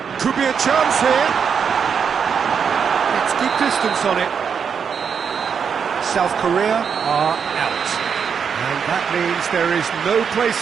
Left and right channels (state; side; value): quieter; left; 6.8 dB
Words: Could be a chance here. It's good distance on it. South Korea are out. And that means there is no place